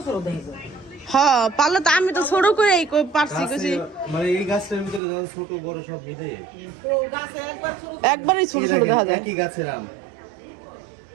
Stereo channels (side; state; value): left; drops out; at 5.0 s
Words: হ্যাঁ পারলো তো, আমি তো ছোট করে পারছি কিছু। মানে এই গাছের ভিতরে যা ছোট বড় সব মিলে একবারই ছোট ছোট দেখা যায়। একই গাছের আম।